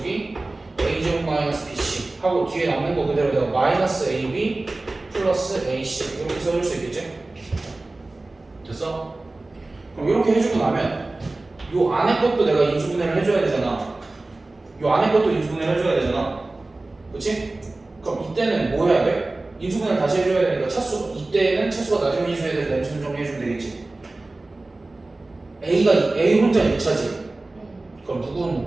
a제곱 마이너스 bc 하고 뒤에 남는 거 그대로 내가 마이너스 ab 플러스 ac 이렇게 써줄 수 있겠지? 됐어? 그럼 이렇게 해주고 나면 요 안에 것도 내가 인수분해를 해줘야 되잖아. 요 안에 것도 인수분해를 해줘야 되잖아. 그치? 그럼 이때는 뭐 해야 돼? 인수분해를 다시 해줘야 되니까 차수 이때는 차수가 낮은 비지수에 대해서 램수는 정리해주면 되겠지. A 혼자 2차지. 그럼 누구는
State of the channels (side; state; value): left; quieter; 3.0 dB